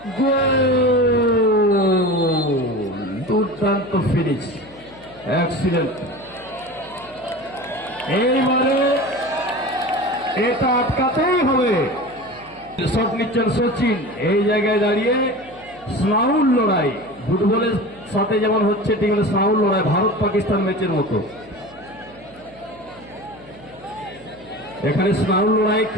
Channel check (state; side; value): noise; left; hum, 26 dB below the sound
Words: দুর্দান্ত ফিনিশ, এক্সিলেন্ট। এইবারে এটা আটকাতেই হবে। শট নিচ্ছেন সচিন, এই জায়গায় দাঁড়িয়ে স্নাউল লড়াই, ফুটবলের সাথে যেমন হচ্ছে ঠিক স্নাউল লড়াই, ভারত পাকিস্তান ম্যাচের মতো। এখানে স্নাউল লড়াই